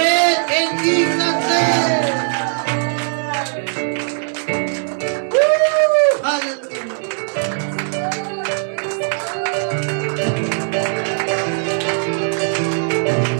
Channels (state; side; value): silent; left; digital silence